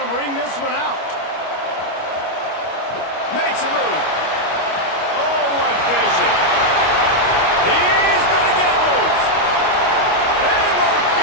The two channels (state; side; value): late; right; 25 ms